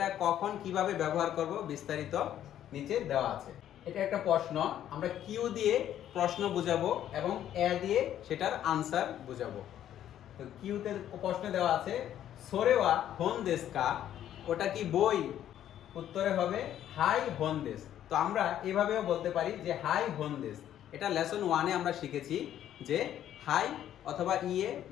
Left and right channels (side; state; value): right; quieter; 11.1 dB